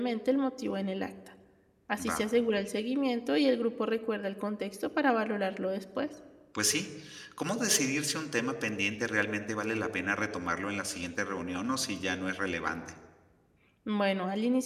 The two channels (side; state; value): both; identical; correlation 1.00